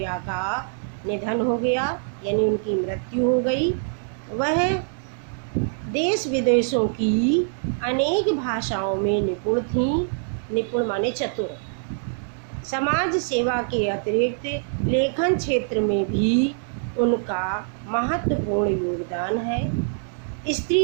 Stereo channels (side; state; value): left; silent; digital silence